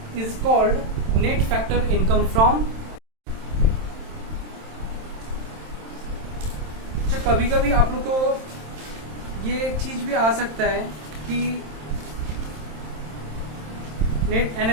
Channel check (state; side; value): late; left; 27 ms